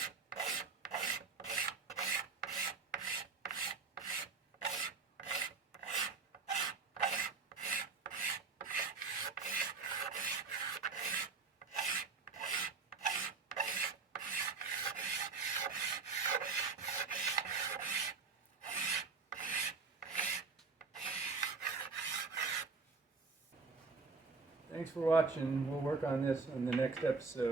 Thanks for watching. We'll work on this on the next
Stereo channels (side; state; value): left; quieter; 4.6 dB